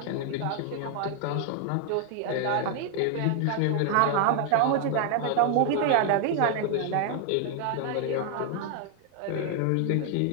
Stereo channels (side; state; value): both; different; correlation 0.00